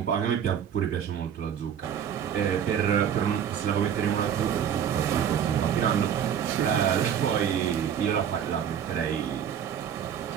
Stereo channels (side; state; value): left; quieter; 8.7 dB